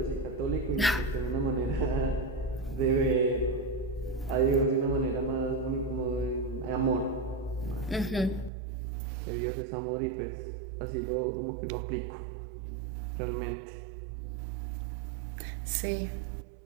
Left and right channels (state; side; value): drops out; left; at 8.5 s